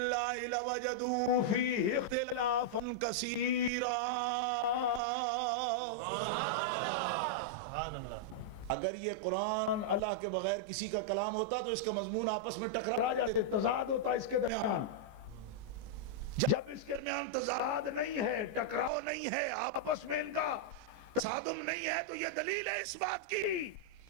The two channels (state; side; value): late; left; 14 ms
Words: لوجدوا فیہ اختلافا کثیرا۔ اگر یہ قرآن اللہ کے بغیر کسی کا کلام ہوتا تو اس کا مضمون آپس میں ٹکرا جاتے، تضاد ہوتا اس کے درمیان۔ جب اس کے درمیان تضاد نہیں ہے، ٹکراؤ نہیں ہے، آپس میں ان کا تصادم نہیں ہے، تو یہ دلیل ہے اس بات کی